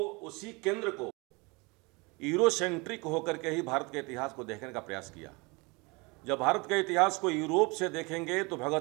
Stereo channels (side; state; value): left; quieter; 27.2 dB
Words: केंद्र को यूरोसेंट्रिक होकर के ही भारत के इतिहास को देखने का प्रयास किया। जब भारत के इतिहास को यूरोप से देखेंगे तो